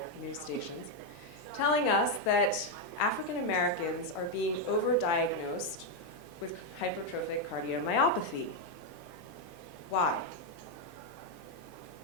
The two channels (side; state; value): both; normal; correlation 0.03